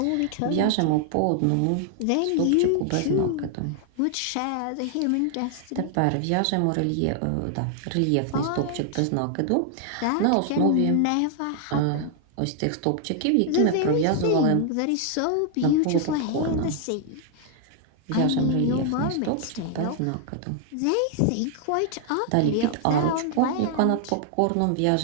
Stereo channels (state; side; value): different; both; correlation 0.00